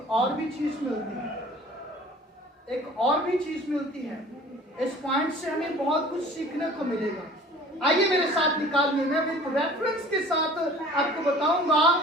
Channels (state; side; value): normal; both; correlation 0.47